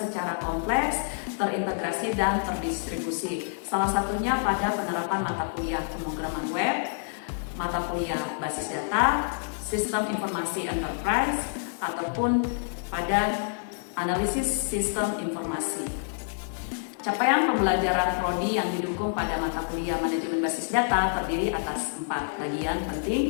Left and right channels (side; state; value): right; silent; digital silence